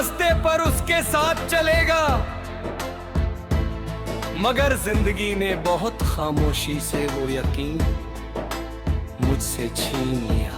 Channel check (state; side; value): identical; both; correlation 1.00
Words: पर उसके साथ चलेगा। मगर जिंदगी ने बहुत खामोशी से वो यकीन मुझसे छीन लिया।